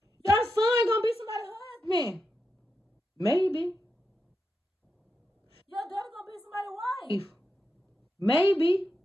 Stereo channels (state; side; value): normal; both; correlation 0.87